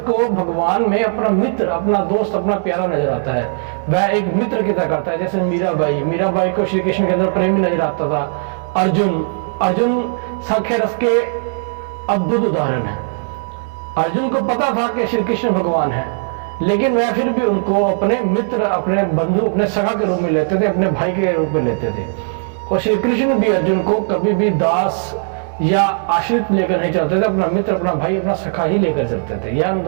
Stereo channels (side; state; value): left; silent; digital silence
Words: को भगवान में अपना मित्र, अपना दोस्त, अपना प्यारा नजर आता है। वह एक मित्र की तरह करता है। जैसे मीराबाई को श्री कृष्ण के अंदर प्रेमी नजर आता था। अर्जुन संख्या रस के अद्भुत उदाहरण है। अर्जुन को पता था कि श्री कृष्ण भगवान है, लेकिन वह फिर भी उनको अपने मित्र, अपने बंधु, अपने सखा के रूप में लेते थे, अपने भाई के रूप में लेते थे। और श्री कृष्ण भी अर्जुन को कभी भी दास या आश्रित लेकर नहीं चलते थे, अपना मित्र, अपना भाई, अपना सखा ही लेकर चलते थे। यह उन